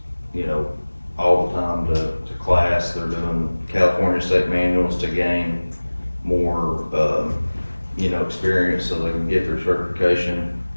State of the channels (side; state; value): both; inverted; correlation -1.00